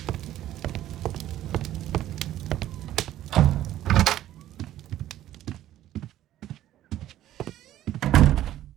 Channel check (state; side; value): quieter; left; 13.1 dB